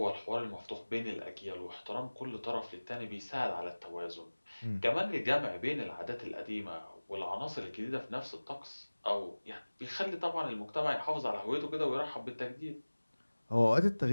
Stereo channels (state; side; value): inverted; both; correlation -1.00